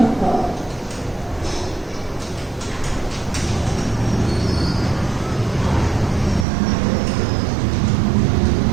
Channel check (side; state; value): left; drops out; at 6.5 s